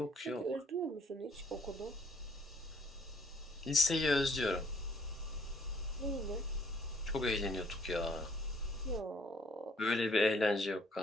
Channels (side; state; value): both; normal; correlation 0.63